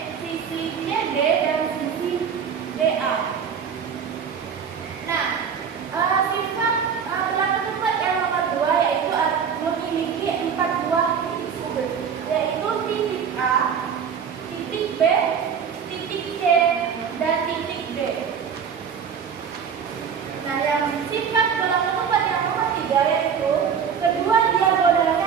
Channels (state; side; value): quieter; left; 7.1 dB